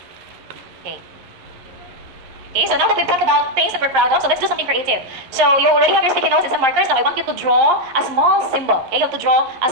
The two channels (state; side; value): late; left; 11 ms